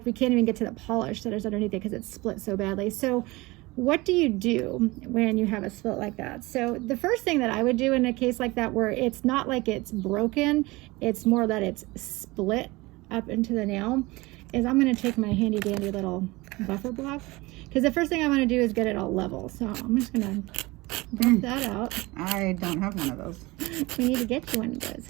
we can't even get to the polish that is underneath it because it's split so badly. So what do you do when you have a split like that? So the first thing that I would do in a case like that, where it's not like it's broken, it's more that it's split up into the nail, is I'm going to take my handy dandy little buffer block, because the first thing I want to do is get it all level. So I'm just going to buff that out. I don't have one of those. We need to get you one of those,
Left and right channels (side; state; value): left; quieter; 22.1 dB